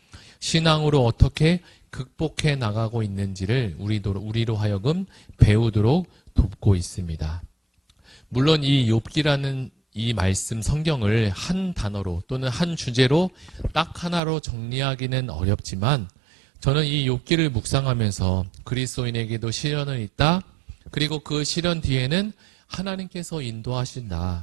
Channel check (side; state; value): left; drops out; at 14.2 s